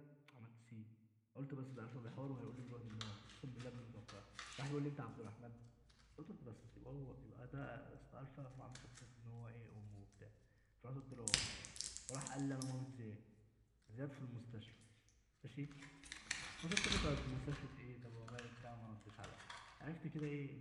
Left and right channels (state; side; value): identical; both; correlation 1.00